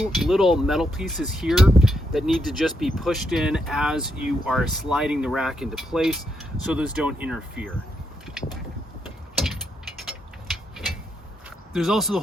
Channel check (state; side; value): normal; both; correlation 0.80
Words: little metal pieces here that need to just be pushed in as you are sliding the rack into place so those don't interfere. There's also the